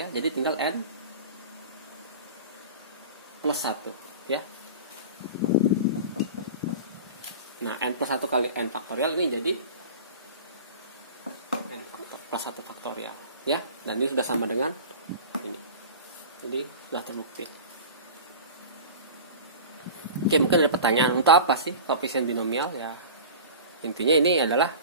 Jadi tinggal N plus 1 ya. Nah, N plus 1 kali N faktorial ini jadi N plus 1 faktorial ya. Dan ini sudah sama dengan ini. Jadi sudah terbukti. Oke, mungkin ada pertanyaan, untuk apa sih koefisien binomial ya? Intinya ini adalah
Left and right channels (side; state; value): both; inverted; correlation -0.35